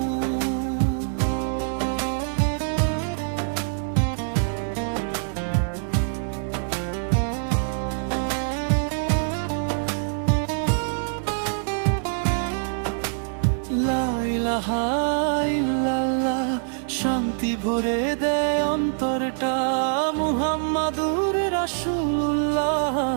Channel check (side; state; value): left; silent; 62 dB below the other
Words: লা ইলাহা ইল্লাল্লাহ, শান্তি ভরে দেয় অন্তরটা। মুহাম্মাদুর রাসূলুল্লাহ,